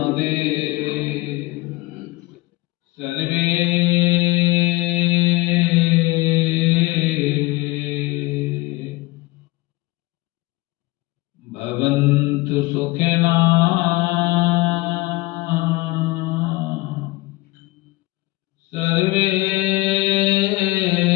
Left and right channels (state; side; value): quieter; right; 20.3 dB